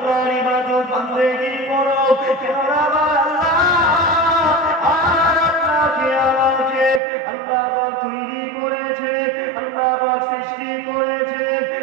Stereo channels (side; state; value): left; drops out; at 7.0 s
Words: ইবাদত বন্দেগী করো, কেননা আমার আল্লাহ আর আপনাকে আমাকে আল্লাহ পাক তৈরি করেছে, আল্লাহ পাক সৃষ্টি করেছে,